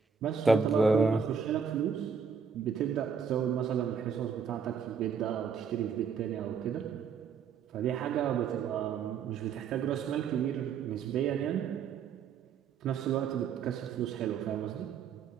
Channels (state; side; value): quieter; left; 6.3 dB